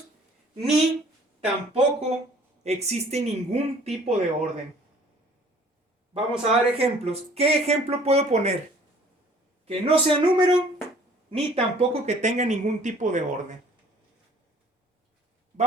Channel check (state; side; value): normal; both; correlation 0.54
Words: ni tampoco existe ningún tipo de orden. Vamos a dar ejemplos. ¿Qué ejemplo puedo poner? Que no sea número, ni tampoco que tenga ningún tipo de orden.